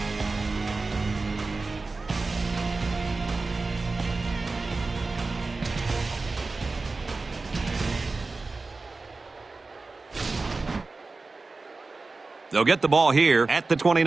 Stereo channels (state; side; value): quieter; left; 3.7 dB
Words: They'll get the ball here at the